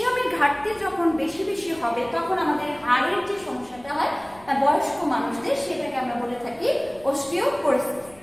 ঘাটতি যখন বেশি বেশি হবে, তখন আমাদের হাড়ের যে সমস্যাটা হয় বয়স্ক মানুষদের, সেটাকে আমরা বলে থাকি অস্টিওপোরোসিস।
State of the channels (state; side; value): noise; left; rumble, 25 dB below the sound